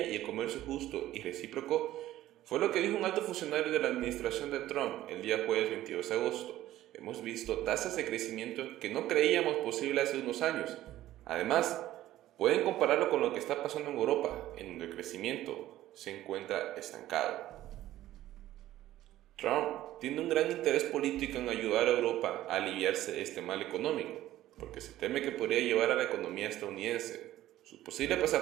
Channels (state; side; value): quieter; left; 14.3 dB